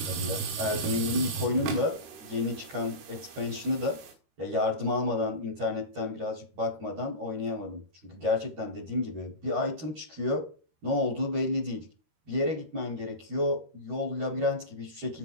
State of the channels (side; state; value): left; late; 13 ms